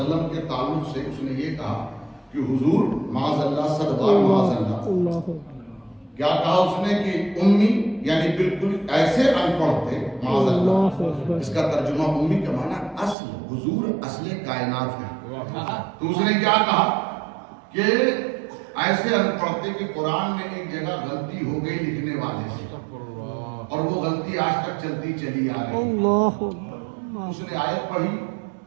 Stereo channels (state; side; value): drops out; left; at 13.2 s